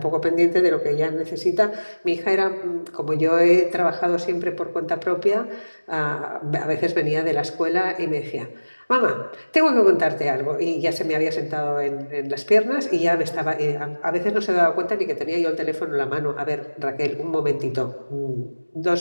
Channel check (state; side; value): inverted; both; correlation -1.00